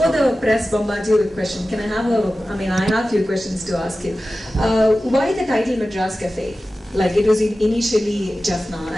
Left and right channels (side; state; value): both; normal; correlation 0.95